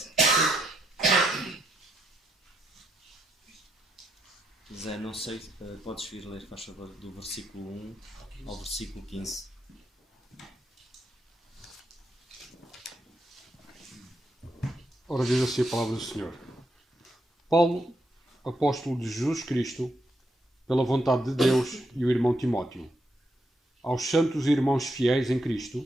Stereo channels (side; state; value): both; normal; correlation 0.79